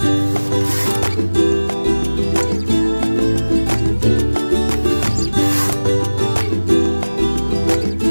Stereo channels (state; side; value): inverted; both; correlation -1.00